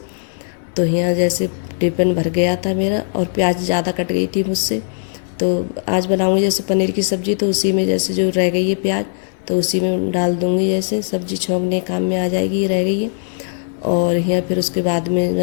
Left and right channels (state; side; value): silent; right; digital silence